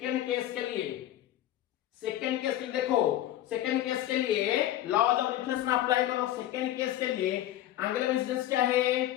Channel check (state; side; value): quieter; right; 13.2 dB